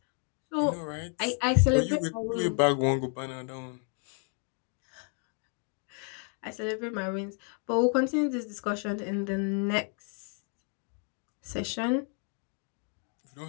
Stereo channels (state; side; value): quieter; right; 38.2 dB